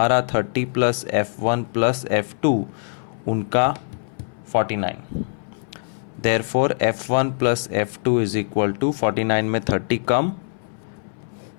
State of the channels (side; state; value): right; silent; 63 dB below the other